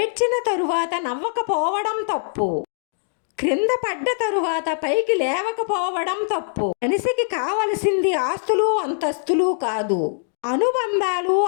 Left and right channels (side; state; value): right; silent; digital silence